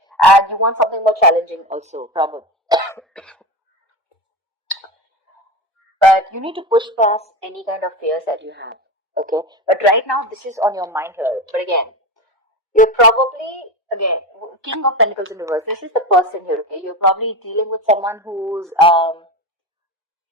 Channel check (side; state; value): both; normal; correlation 0.23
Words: And you want something more challenging also, probably. But you need to push past any kind of fears that you have, okay? But right now, this is on your mind here. But again, you're probably, again, King of Pentacles in reverse. This is the person here, okay? You're probably dealing with someone who's